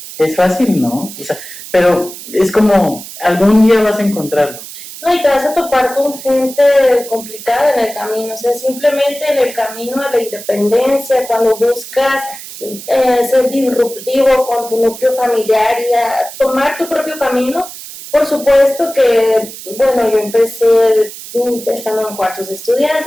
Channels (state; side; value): noise; right; hiss, 13 dB below the sound